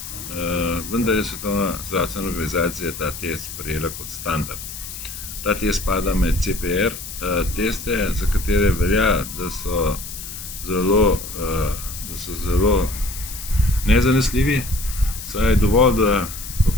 vendar je Svetovna zdravstvena organizacija ta test sprejela kot standard. Ta test spada med CPR teste, za katere velja, da so zelo nezanesljivi, saj je dovolj, da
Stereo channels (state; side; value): noise; left; hiss, 10 dB below the sound